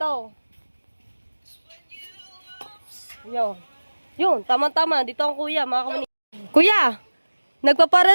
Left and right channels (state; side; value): inverted; both; correlation -1.00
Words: Yun, tama-tama. Dito ang kuya, mga kamuning. Kuya!